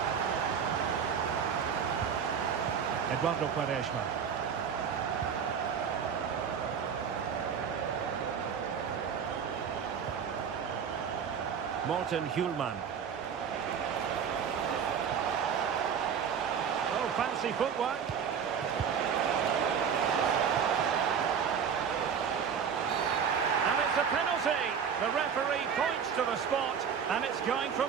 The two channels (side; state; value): left; quieter; 7.2 dB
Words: Eduardo Quaresma. Morten Hjulman. Oh, fancy footwork. And it's a penalty. The referee points to the spot, and it's going